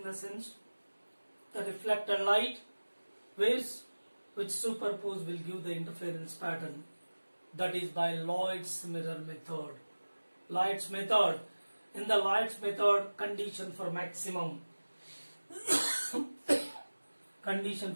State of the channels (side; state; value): both; inverted; correlation -1.00